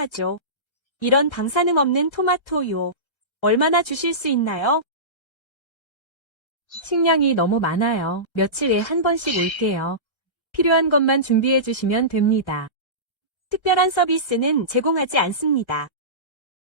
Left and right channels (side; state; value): right; late; 1.3 ms